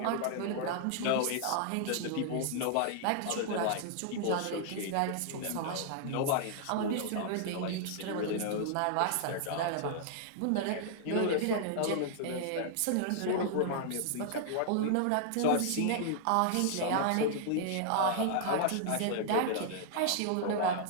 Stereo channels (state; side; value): different; both; correlation -0.01